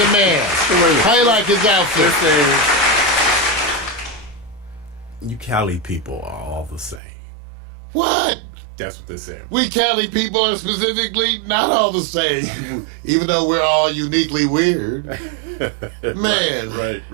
man. How you like his outfit? You Cali people are all the same. What? That's what they say. We Cali people are specifically not all the same, even though we're all uniquely weird. Man.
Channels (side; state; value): left; drops out; at 7.0 s